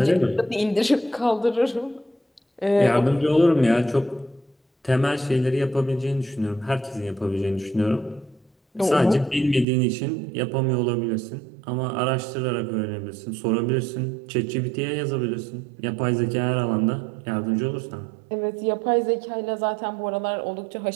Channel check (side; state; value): left; drops out; at 9.7 s